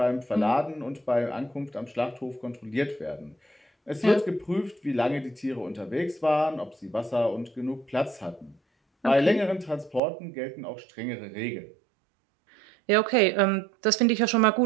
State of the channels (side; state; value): left; drops out; at 10.0 s